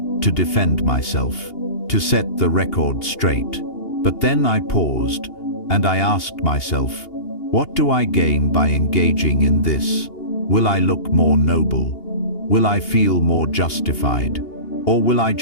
to defend myself, to set the record straight. But then I paused, and I asked myself, what do I gain by engaging in this? Will I look more noble? Will I feel more justified? Or will I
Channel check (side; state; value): right; late; 2.8 ms